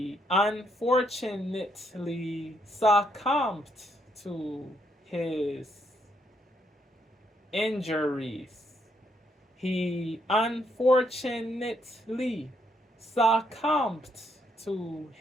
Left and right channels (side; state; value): both; normal; correlation 0.74